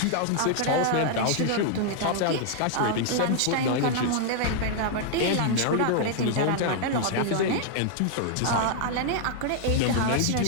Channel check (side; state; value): both; different; correlation 0.00